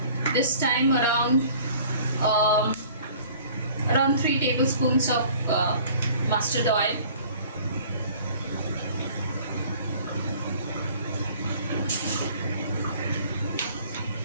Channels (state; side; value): inverted; both; correlation -0.51